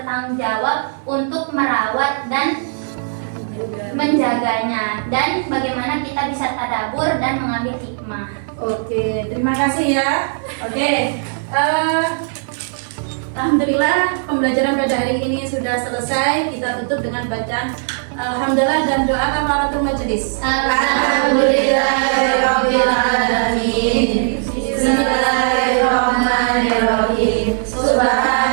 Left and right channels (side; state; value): left; silent; digital silence